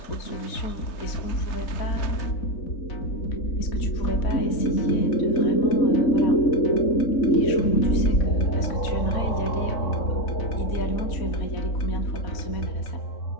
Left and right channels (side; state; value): right; late; 4.1 ms